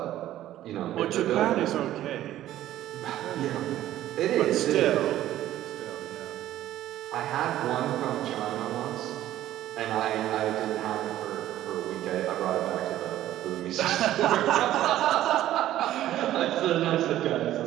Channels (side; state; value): left; quieter; 13.4 dB